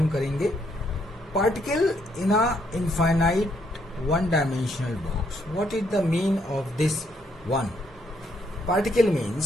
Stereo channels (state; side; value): normal; both; correlation 0.72